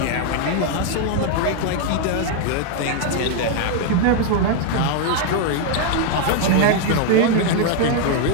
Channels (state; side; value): different; both; correlation 0.00